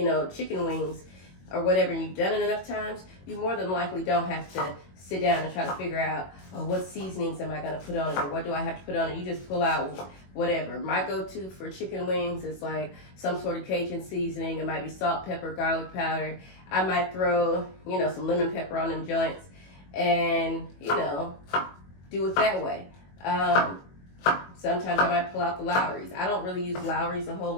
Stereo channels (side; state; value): right; late; 21 ms